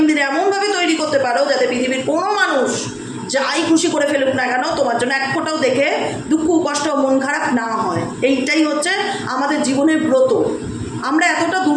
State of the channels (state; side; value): identical; both; correlation 1.00